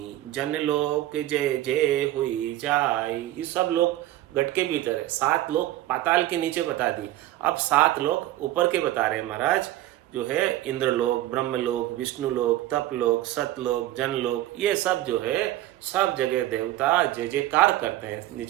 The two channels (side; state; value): left; quieter; 14.9 dB